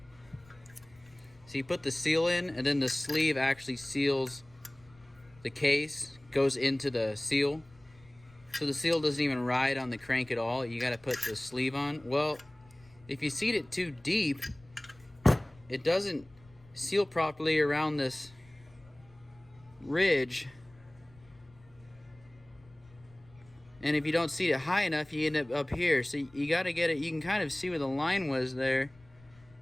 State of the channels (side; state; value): left; noise; rumble, 27 dB below the sound